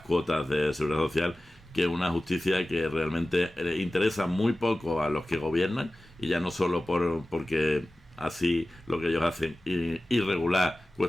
de seguridad social que una justicia que realmente interesa muy poco a los que gobiernan, y ya no solo porque así lo que ellos hacen irregular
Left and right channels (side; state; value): both; normal; correlation 0.96